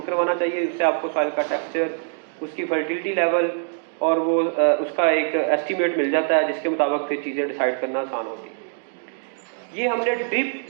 करवाना चाहिए, उससे आपको सॉइल का टेक्सचर, उसकी फर्टिलिटी लेवल और वो उसका एक एस्टीमेट मिल जाता है जिसके मुताबिक फिर चीज़ें डिसाइड करना आसान होती है। ये हमने ड्रिप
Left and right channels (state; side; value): silent; left; digital silence